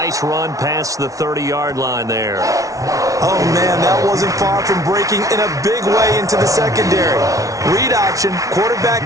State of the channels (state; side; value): late; left; 0.17 ms